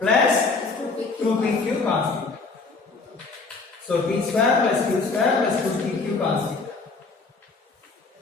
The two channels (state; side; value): quieter; right; 4.1 dB